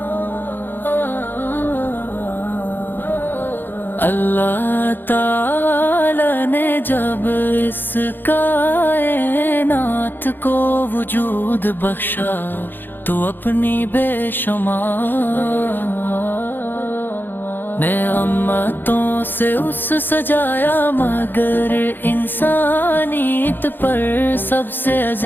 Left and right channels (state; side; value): late; right; 0.094 ms